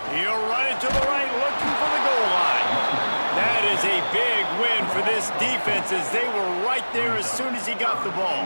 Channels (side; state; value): both; inverted; correlation -1.00